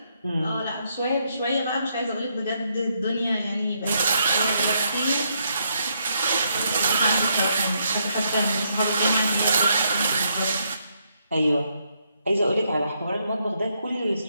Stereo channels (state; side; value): inverted; both; correlation -0.76